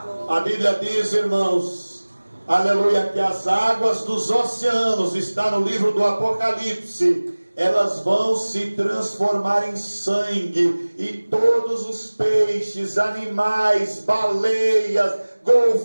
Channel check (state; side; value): inverted; both; correlation -1.00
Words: A Bíblia diz, irmãos, aleluia, que as águas dos oceanos, está no livro do Apocalipse, elas vão se transformar em sangue, e todos os peixes, animais, baleias,